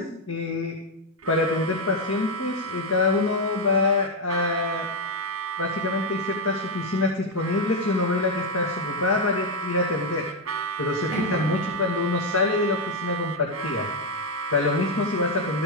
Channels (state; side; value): normal; both; correlation 0.04